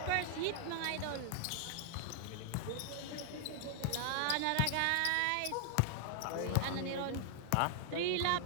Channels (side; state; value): both; different; correlation 0.00